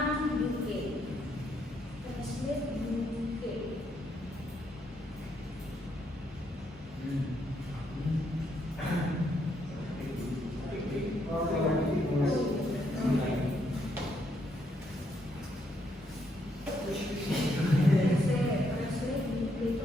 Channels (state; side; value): normal; both; correlation 0.75